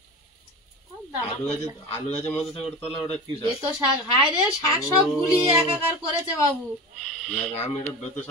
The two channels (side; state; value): both; normal; correlation 0.29